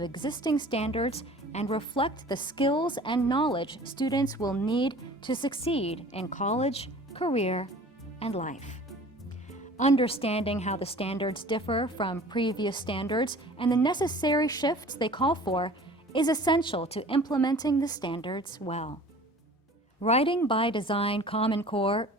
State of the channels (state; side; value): normal; both; correlation 0.46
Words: existing standards and reflect the skills and knowledge students will need to succeed in college, career, and life. Understanding how the standards differ from previous standards and the necessary shifts they call for is essential to implementing the standards well. Writing by Design Common Core